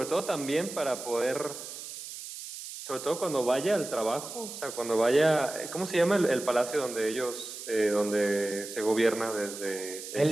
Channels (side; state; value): right; noise; hiss, 10 dB below the sound